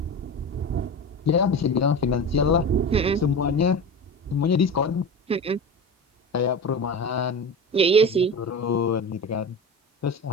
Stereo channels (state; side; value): normal; both; correlation 0.28